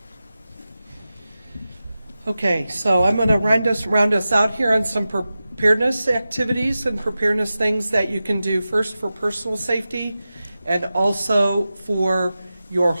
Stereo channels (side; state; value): both; inverted; correlation -0.94